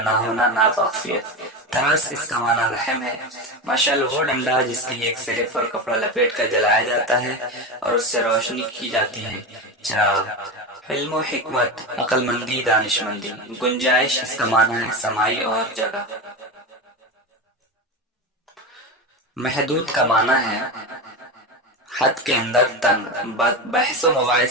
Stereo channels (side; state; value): both; normal; correlation 0.20